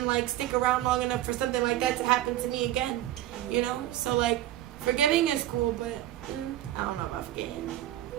like stick around long enough for something like that to happen to me again, you know? So like, Forgiving is cool, but I don't know about forgetting.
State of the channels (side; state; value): left; quieter; 13.7 dB